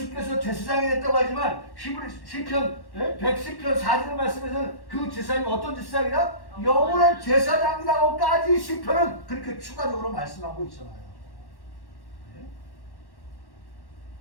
제사장이 됐다고 하지만 시편 110편 4절의 말씀에서는 그 제사장이 어떤 제사장이다? 영원한 제사장이라고까지 시편은 그렇게 추가적으로 말씀하고 있잖아요. 네?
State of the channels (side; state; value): right; late; 1.1 ms